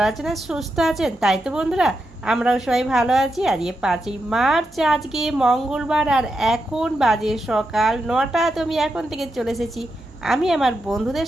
আছেন আর সুস্থ আছেন। তাই তো বন্ধুরা, আমরাও সবাই ভালো আছি। আজকে 5ই মার্চ, আজকে মঙ্গলবার, আর এখন বাজে সকাল 9টা। তো আমি এখন থেকে চলে এসেছি আমি আমার বন্ধুদের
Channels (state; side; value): normal; both; correlation 0.86